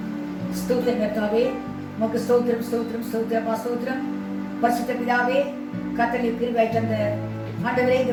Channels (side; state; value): both; identical; correlation 1.00